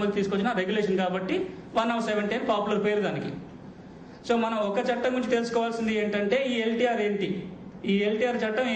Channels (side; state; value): both; identical; correlation 1.00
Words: తీసుకొచ్చిన రెగ్యులేషన్ కాబట్టి 170 అని పాపులర్ పేరు దానికి. సో మనం ఒక చట్టం గురించి తెలుసుకోవాల్సింది ఏంటంటే ఈ ఎల్టీఆర్ ఏంటి, ఈ ఎల్టీఆర్ చట్టం